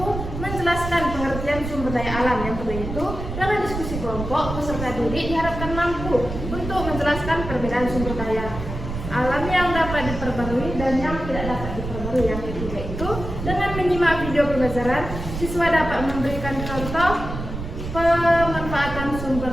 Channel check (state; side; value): noise; right; rumble, 7 dB below the sound